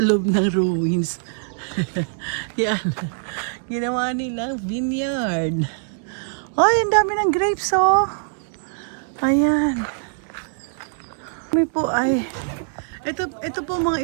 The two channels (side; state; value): left; silent; digital silence